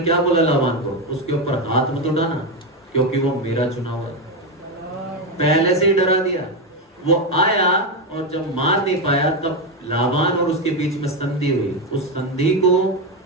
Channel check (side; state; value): both; normal; correlation 0.10